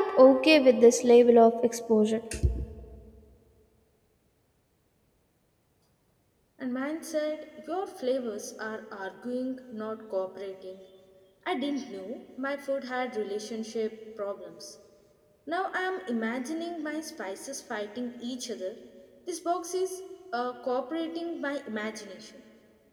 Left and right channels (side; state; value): both; identical; correlation 1.00